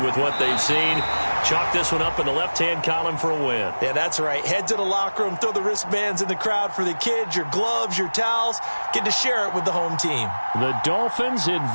what they've seen. Chalk this one up in the left-hand column for a win. Yeah, that's right. Head to the locker room, throw the wristbands in the crowd for the kids, your gloves, your towels. Get to share it with the home team. The Dolphins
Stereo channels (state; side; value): inverted; both; correlation -1.00